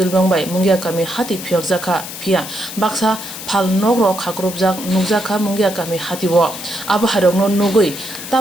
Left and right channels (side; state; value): left; noise; hiss, 10 dB below the sound